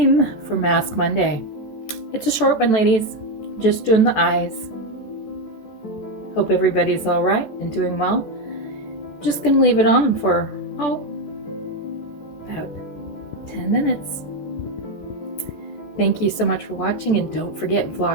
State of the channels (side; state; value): right; late; 14 ms